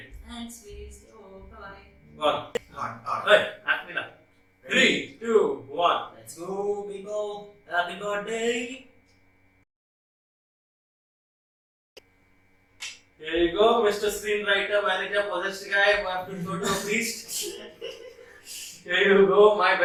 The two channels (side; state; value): both; identical; correlation 1.00